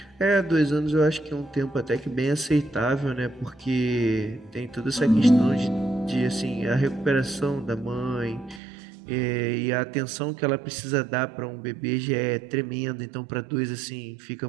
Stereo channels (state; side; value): drops out; left; at 8.6 s